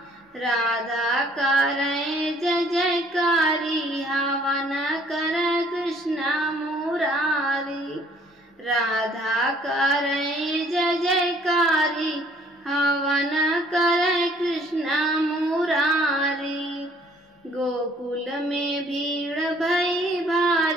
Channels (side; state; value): both; normal; correlation 0.59